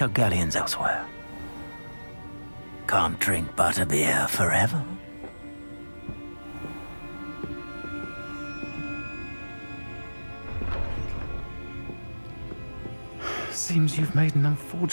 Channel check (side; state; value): both; inverted; correlation -1.00